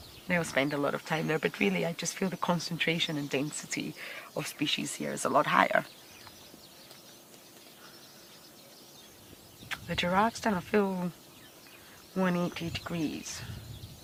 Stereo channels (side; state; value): both; identical; correlation 1.00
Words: they'll spend a lot of time there, but really I just feel the concentration and density of species here is a lot higher. The giraffe's done a full 180 degrees.